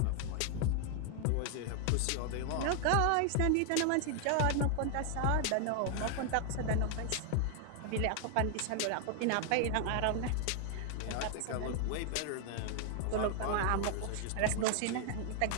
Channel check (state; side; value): different; both; correlation 0.00